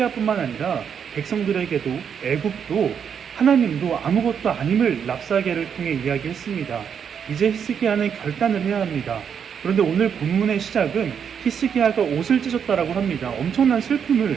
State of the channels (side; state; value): left; quieter; 7.5 dB